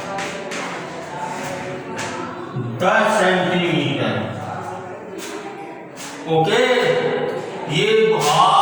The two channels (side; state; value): both; identical; correlation 1.00